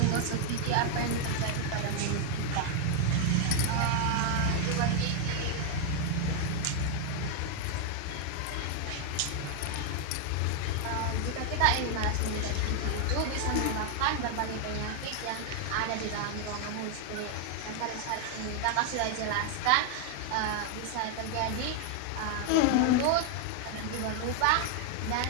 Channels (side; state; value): both; different; correlation 0.00